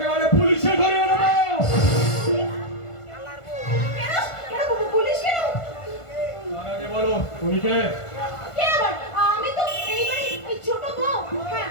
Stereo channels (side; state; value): right; late; 1.5 ms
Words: পুলিশে ধরে নেবো। কেন কেন পুলিশ কেন? তার আগে বলো তুমি কে? কে আবার? আমি তো এইবারে এই ছোট বউ। হ্যাঁ।